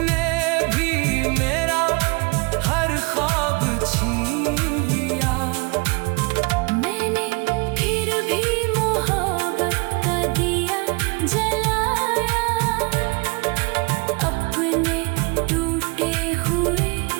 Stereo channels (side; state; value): left; quieter; 29.6 dB